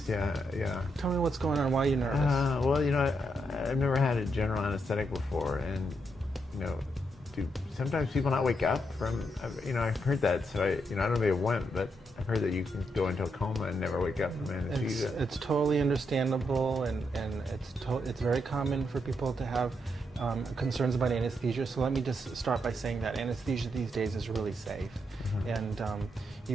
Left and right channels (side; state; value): both; normal; correlation 0.80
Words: Yeah. Tell me what's going on. Why are you nervous? Well, I've never had a general anesthetic before, and do sometimes people not wake up from? I've heard that, so I don't know if they went, but I've heard that you can go into a coma and never wake up from anesthesia. It's totally understandable, and it's very common for people to have concerns about anesthesia. So let me just start by saying that anesthesia these days is really safe. And